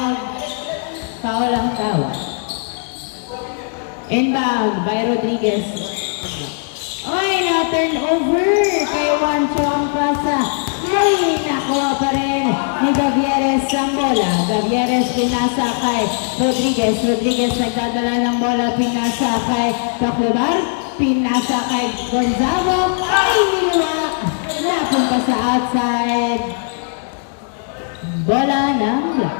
Foul ang tawag. Inbound by Rodriguez. Ay, na-turn over kay Juancho ang pasa. Ay, nakuha pa rin ni Gavieres ang bola. Gavieres pinasa kay Rodriguez. Rodriguez nagdadala ng bola. Pinasa kay Paclubar. Pinasa kay Gonzalo. Ay, niliwa. Napunta sa outside. Bola ng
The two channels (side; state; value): right; silent; 58 dB below the other